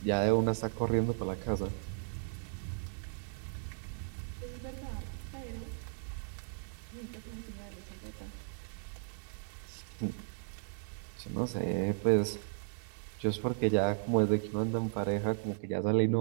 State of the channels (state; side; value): silent; left; digital silence